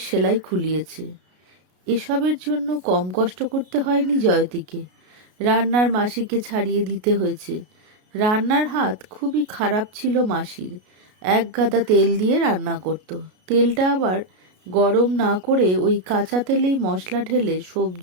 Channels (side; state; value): left; late; 33 ms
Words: সেলাই খুলিয়েছে। এসবের জন্য কম কষ্ট করতে হয়নি জয়তীকে। রান্নার মাসিকে ছাড়িয়ে দিতে হয়েছে। রান্নার হাত খুবই খারাপ ছিল মাসির। এক গাদা তেল দিয়ে রান্না করত। তেলটা আবার গরম না করে ওই কাঁচা তেলেই মশলা ঢেলে